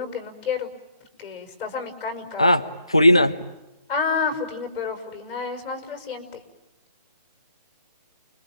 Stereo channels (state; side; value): inverted; both; correlation -0.70